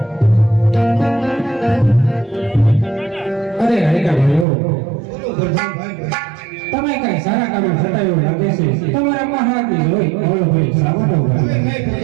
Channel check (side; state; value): left; drops out; at 4.5 s